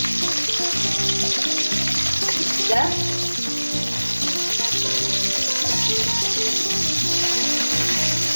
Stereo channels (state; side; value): inverted; both; correlation -1.00